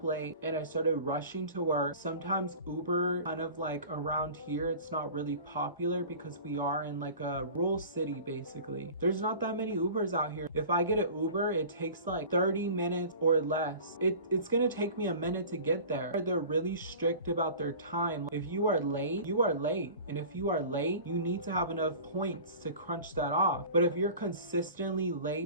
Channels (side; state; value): both; inverted; correlation -0.40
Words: late and I started rushing to work. Sometimes Uber, kind of like around here, it's not really popular because we are in like a rural city basically. There's not that many Ubers out here. If I get an Uber, it takes like 30 minutes or less. It's gonna take me a minute to get there. They're really strict about their time. If you are late, you are late. And if you are late, you need to have enough points to crunch that off. But if you're consistently